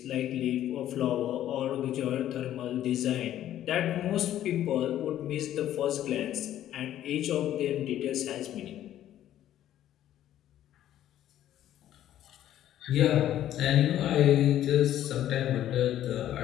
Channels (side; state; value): right; quieter; 12.1 dB